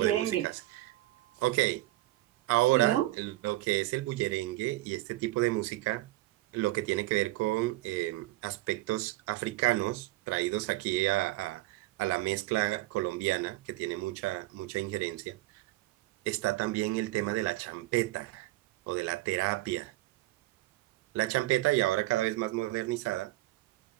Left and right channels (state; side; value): quieter; left; 18.2 dB